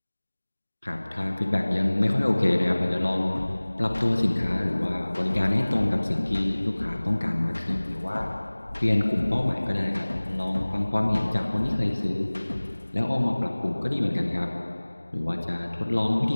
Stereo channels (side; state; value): both; inverted; correlation -1.00